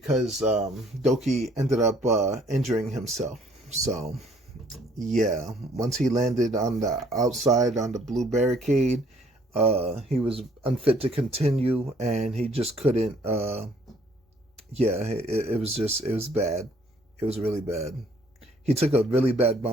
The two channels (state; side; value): normal; both; correlation 0.61